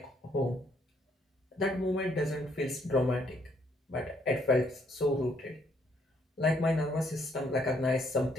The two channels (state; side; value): normal; both; correlation 0.69